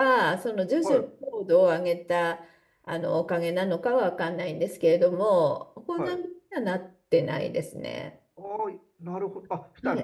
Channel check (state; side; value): identical; both; correlation 1.00